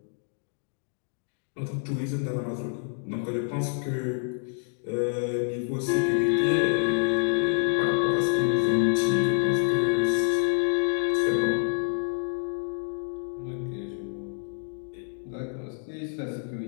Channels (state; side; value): silent; right; 60 dB below the other